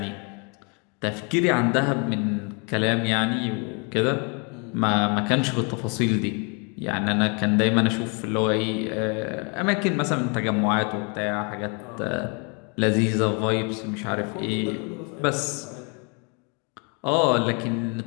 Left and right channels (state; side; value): quieter; right; 34.5 dB